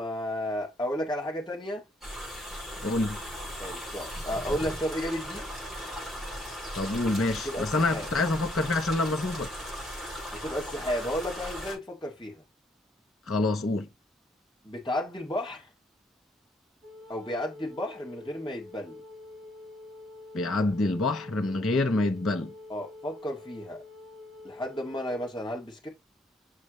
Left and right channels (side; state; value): both; normal; correlation 0.69